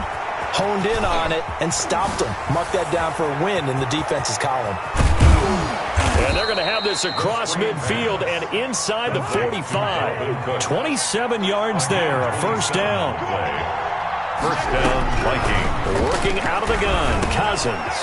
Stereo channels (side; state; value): both; identical; correlation 1.00